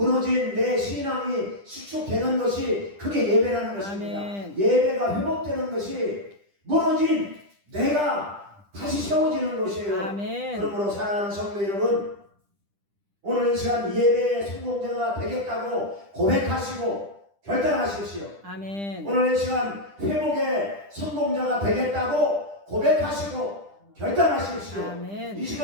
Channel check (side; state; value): left; late; 10 ms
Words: 내 신앙이 수축되는 것이 그게 예배라는 것입니다. 아멘. 예배가 회복되는 것이 무너진 내가 다시 세워지는 것이에요. 아멘. 그러므로 사랑하는 성도 여러분, 오늘 이 시간 예배의 성공자가 되겠다고 고백하시고 결단하십시오. 아멘. 오늘 이 시간 회복의 성공자가 되겠다고 고백하시고 결단하십시오. 아멘. 이